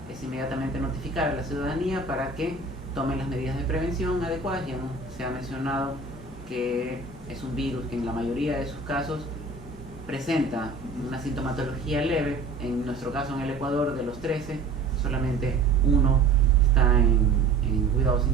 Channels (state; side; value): quieter; left; 3.9 dB